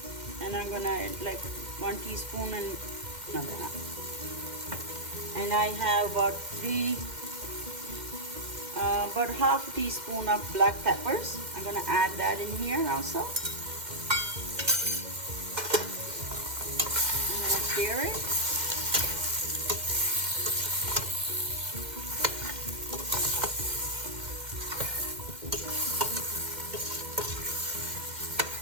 And I'm gonna add like 1 teaspoon and another half. And I have about half a teaspoon of black peppers. I'm gonna add that in here also. I'm gonna stir it.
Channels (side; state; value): left; late; 2.1 ms